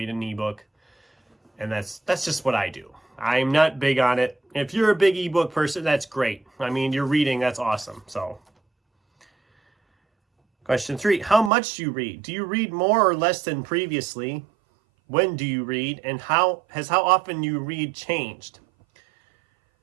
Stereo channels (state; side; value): drops out; left; at 11.5 s